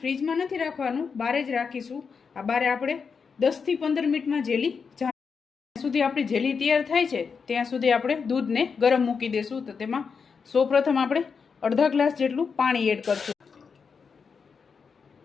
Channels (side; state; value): right; quieter; 5.7 dB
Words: ફ્રીજમાં નથી રાખવાનું, બહાર જ રાખીશું. આ બારે આપણે 10 થી 15 મિનિટમાં જેલી જ્યાં સુધી આપણી જેલી તૈયાર થાય છે ત્યાં સુધી આપણે દૂધને ગરમ મૂકી દેશું. તો તેમાં સૌપ્રથમ આપણે અડધા ગ્લાસ જેટલું પાણી એડ કરશું.